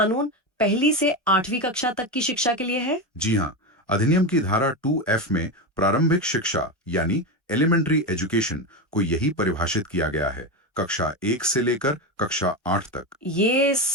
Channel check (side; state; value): both; normal; correlation 0.16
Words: 1ली से 8वीं कक्षा तक की शिक्षा के लिए है? जी हाँ, अधिनियम की धारा 2F में प्रारंभिक शिक्षा यानी एलिमेंट्री एजुकेशन को यही परिभाषित किया गया है, कक्षा 1 से लेकर कक्षा 8 तक। ये